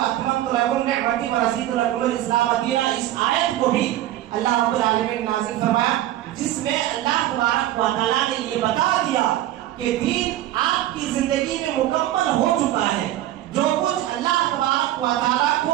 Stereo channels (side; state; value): left; quieter; 13.8 dB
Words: لکم نعمتی ورضیت لکم الاسلام دینا، اس آیت کو بھی اللہ رب العالمین نے نازل فرمایا، جس میں اللہ تبارک و تعالیٰ نے یہ بتا دیا کہ دین آپ کی زندگی میں مکمل ہو چکا ہے۔ جو کچھ اللہ تبارک و تعالیٰ